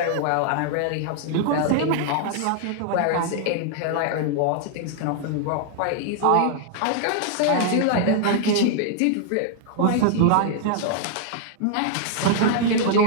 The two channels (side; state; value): both; different; correlation -0.01